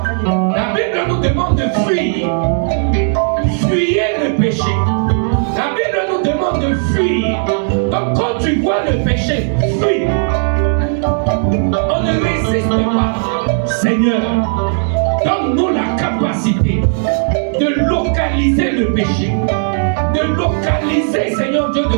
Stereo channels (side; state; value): left; silent; digital silence